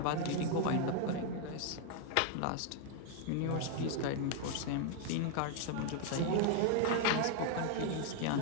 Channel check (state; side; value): different; both; correlation 0.00